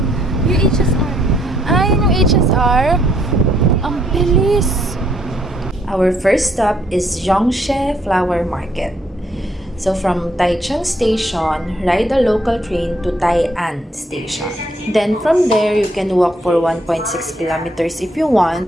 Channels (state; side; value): normal; both; correlation 0.69